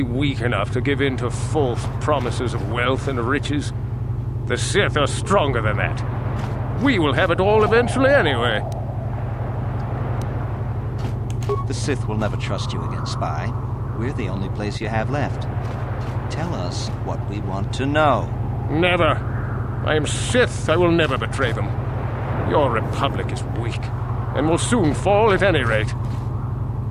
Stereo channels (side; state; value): both; identical; correlation 1.00